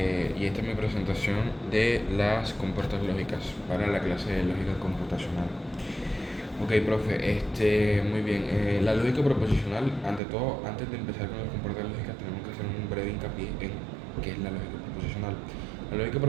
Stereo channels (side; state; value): left; drops out; at 10.2 s